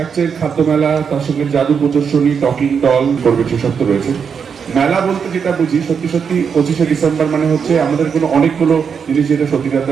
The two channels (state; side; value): quieter; left; 6.6 dB